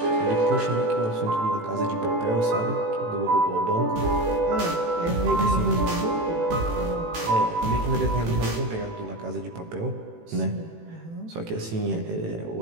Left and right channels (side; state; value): left; late; 18 ms